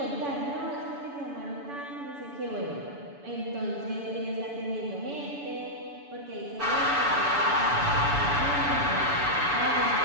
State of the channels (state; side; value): late; left; 7.0 ms